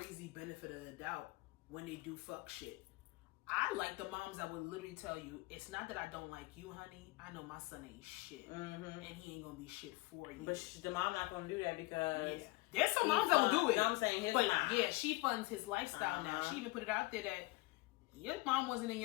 benefit of the doubt when they do fuck shit. I like the moms that would literally tell you, it's not that I don't like you, honey. I know my son ain't shit. And he ain't gonna be shit for you. But the mom not gonna do that because... Yeah. There's some moms that will do it. You know what I'm saying? His mom. Yeah, she funds his lifestyle now. She even put it out there that your mom wasn't in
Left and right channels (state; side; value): quieter; right; 22.9 dB